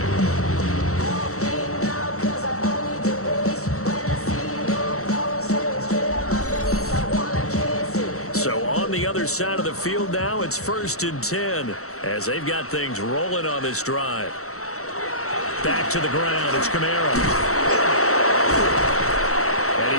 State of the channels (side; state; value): right; late; 0.64 ms